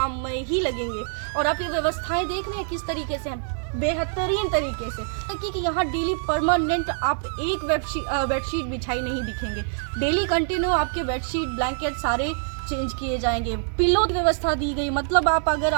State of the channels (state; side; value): silent; left; 61 dB below the other